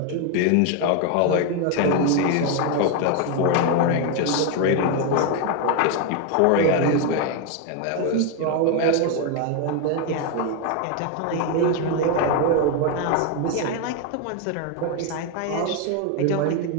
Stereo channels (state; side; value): different; both; correlation 0.01